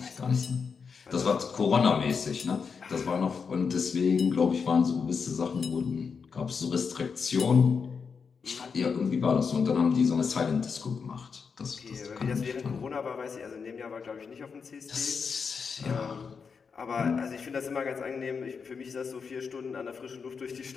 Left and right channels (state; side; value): quieter; right; 5.7 dB